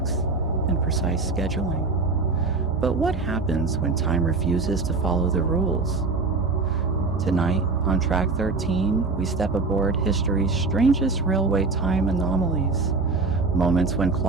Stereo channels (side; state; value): left; quieter; 3.9 dB